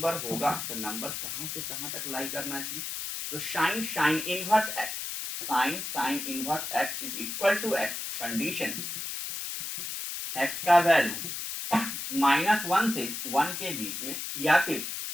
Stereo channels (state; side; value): noise; left; hiss, 5 dB below the sound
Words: होगा तो नंबर कहां से कहां तक लाई करना चाहिए, तो sine inverse x sine inverse x is equal to x, condition x का वैल्यू -1 से 1 के बीच में या फिर